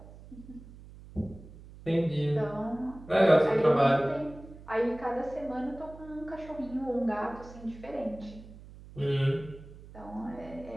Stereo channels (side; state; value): right; noise; hum, 18 dB below the sound